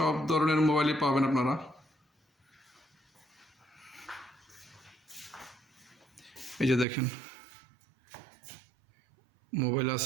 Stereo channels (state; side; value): drops out; left; at 6.9 s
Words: ধরনের মোবাইলই পাবেন আপনারা। এই যে দেখেন, মোবাইল